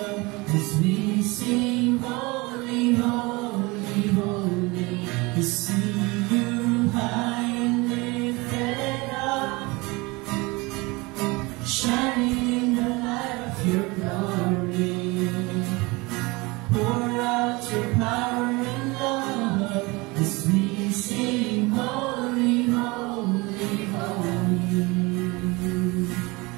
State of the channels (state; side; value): quieter; left; 24.5 dB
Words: as we sing, holy, holy, holy. To see you high and lifted up, shining in the light of your glory. Pour out your power and love as we sing, holy, holy, holy.